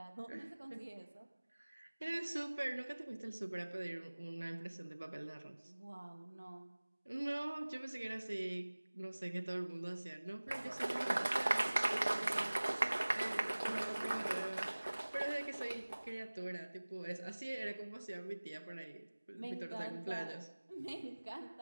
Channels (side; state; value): both; inverted; correlation -1.00